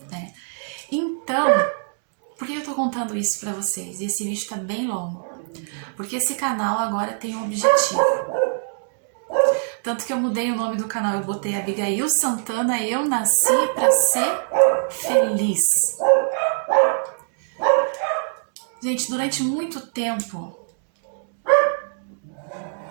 Né? Então, por que eu estou contando isso para vocês? E esse vídeo está bem longo. Porque esse canal agora tem um objetivo. Tanto que eu mudei o nome do canal, eu botei Abigail Santana, eu nasci para ser feliz. Gente, durante muito tempo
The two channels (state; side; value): silent; left; 64 dB below the other